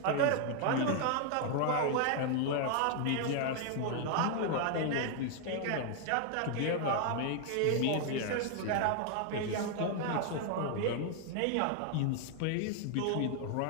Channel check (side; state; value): both; different; correlation 0.00